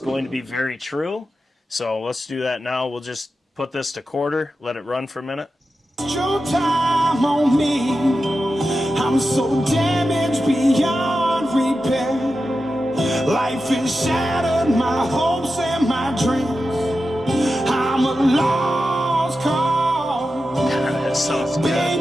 going to be very true. So let's do that now. We'll just put this to quarter, let it run for a minute. Your time on me. I'm so damaged beyond repair. Life has shattered my hopes and my dreams. I'm a lost cause. That sounds good.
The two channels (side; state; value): both; normal; correlation 0.91